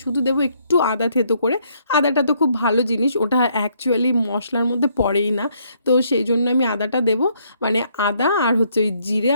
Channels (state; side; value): inverted; both; correlation -0.70